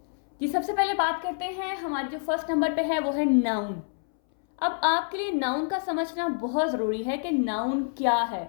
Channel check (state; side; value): silent; right; 60 dB below the other